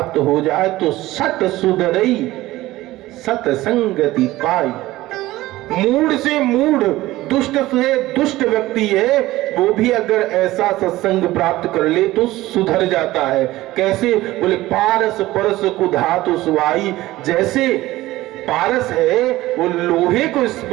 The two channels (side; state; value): left; quieter; 17.2 dB